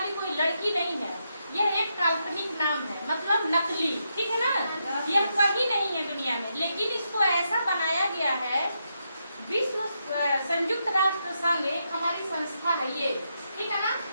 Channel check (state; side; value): inverted; both; correlation -0.82